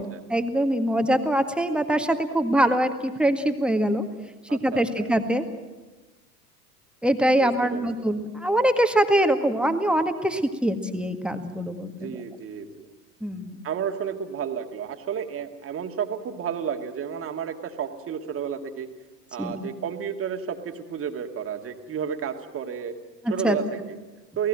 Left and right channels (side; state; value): both; normal; correlation 0.68